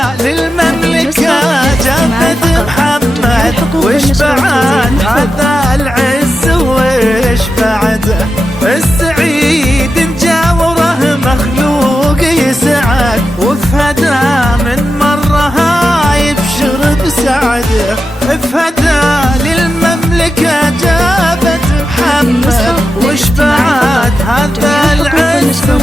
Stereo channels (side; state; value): both; normal; correlation 0.90